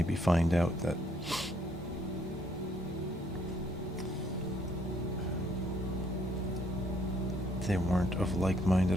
find out that they weren't of like mind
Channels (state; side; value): normal; both; correlation 0.68